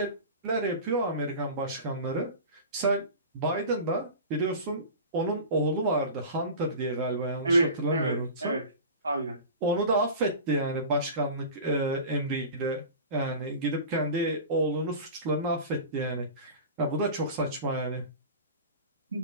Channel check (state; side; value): inverted; both; correlation -0.34